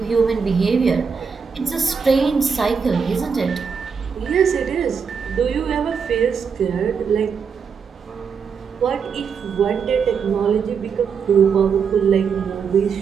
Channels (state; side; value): quieter; left; 6.1 dB